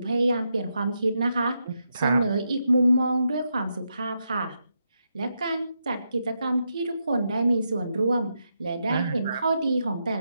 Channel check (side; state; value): both; inverted; correlation -0.83